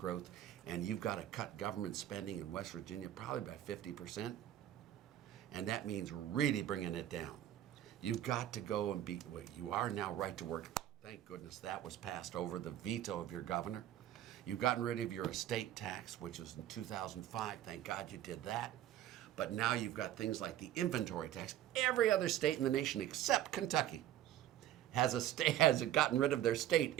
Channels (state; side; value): quieter; left; 12.3 dB